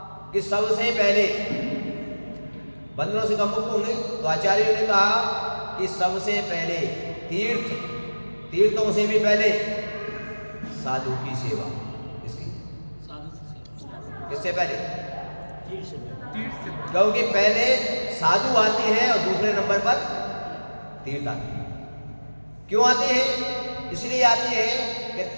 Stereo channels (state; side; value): inverted; both; correlation -1.00